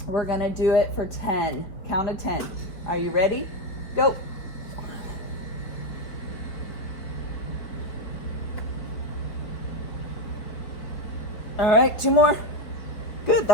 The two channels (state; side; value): late; right; 4.9 ms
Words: We're gonna do it for 10, count of 10. Are you ready? Go. All right, 2 more. Good,